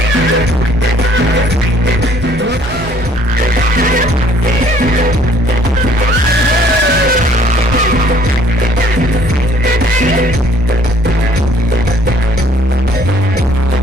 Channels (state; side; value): normal; both; correlation 0.59